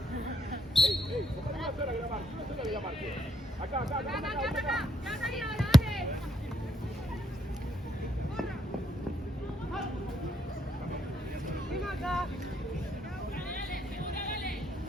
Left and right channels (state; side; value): normal; both; correlation 0.74